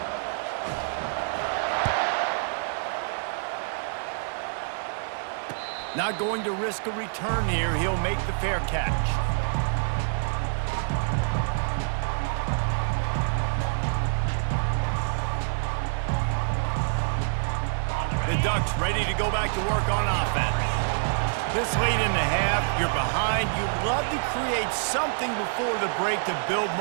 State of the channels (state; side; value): silent; left; 60 dB below the other